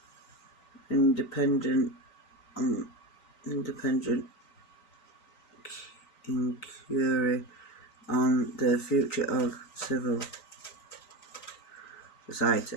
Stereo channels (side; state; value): right; late; 3.9 ms